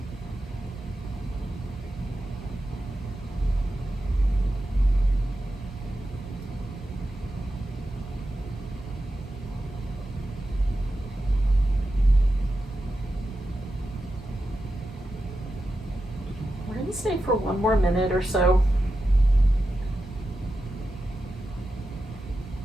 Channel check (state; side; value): normal; both; correlation 0.90